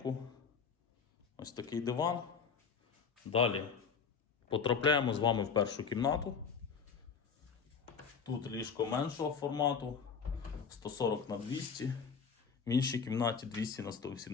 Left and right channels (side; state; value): right; quieter; 6.1 dB